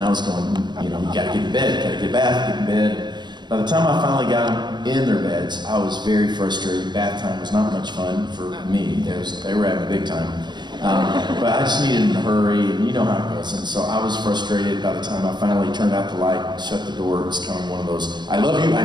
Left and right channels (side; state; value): left; late; 0.21 ms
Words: was going, you know, you gotta get in bed, gotta get a bath, get in bed. By the time I finally got them in their beds, I was very frustrated. Bath time was not much fun for me. They were having a big time. But I just needed to hurry, and you know how it goes. And so I was frustrated by the time I finally turned out the light, shut the door. It was kind of one of those, I love you,